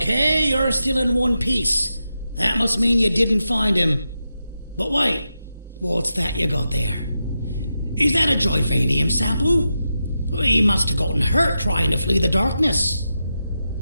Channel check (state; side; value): inverted; both; correlation -0.88